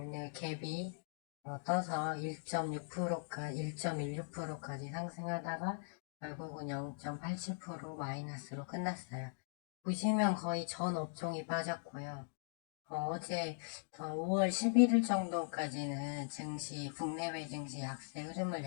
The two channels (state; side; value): silent; right; digital silence